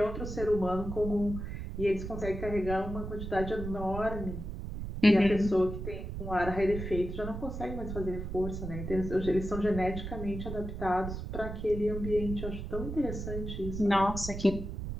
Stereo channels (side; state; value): right; noise; rumble, 6 dB below the sound